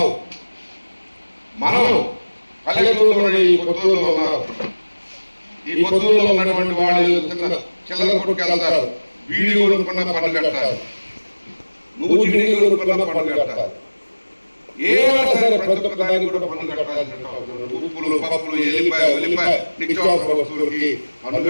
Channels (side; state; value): both; inverted; correlation -1.00